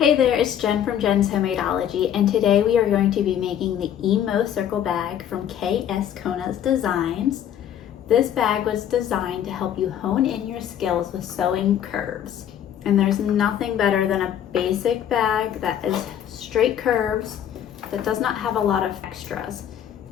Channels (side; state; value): right; quieter; 10.0 dB